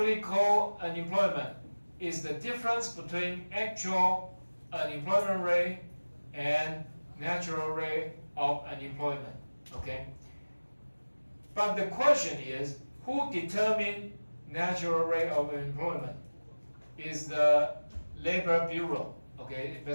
unemployment? Is the difference between actual unemployment rate and natural rate of unemployment, okay? But the question is, who determines natural rate of unemployment? Is the Labor Bureau, okay?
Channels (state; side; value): inverted; both; correlation -1.00